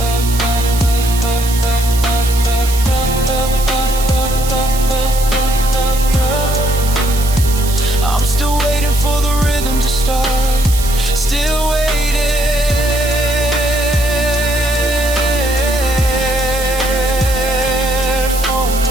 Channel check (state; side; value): noise; right; hiss, 9 dB below the sound